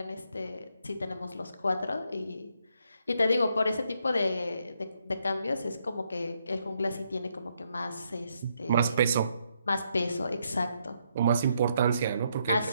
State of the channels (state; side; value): inverted; both; correlation -0.76